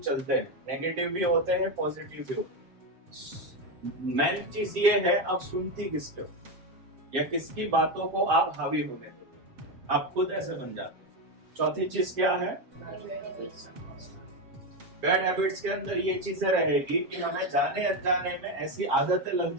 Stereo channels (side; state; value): left; late; 7.6 ms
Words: चलते हैं, नेगेटिव भी होते हैं, पॉजिटिव भी होते हैं। मेन चीज ये है, आप सुनती किसके हो या किसकी बातों को आप हावी होने देते हो, आप खुद ऐसे बन जाते हो। चौथी चीज क्या है? बैड हैबिट्स के अंदर ये चीजें रहेगी कि हमें जाने अनजाने में ऐसी आदतें लग